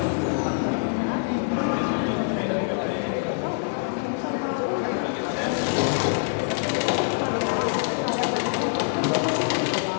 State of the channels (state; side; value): silent; right; 62 dB below the other